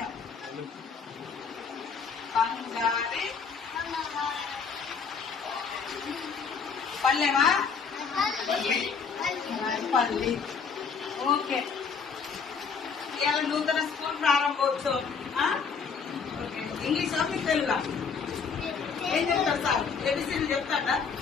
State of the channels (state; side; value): quieter; right; 5.7 dB